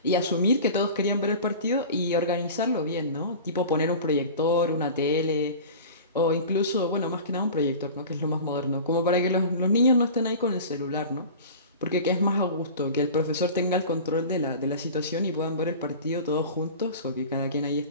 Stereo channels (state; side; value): inverted; both; correlation -0.36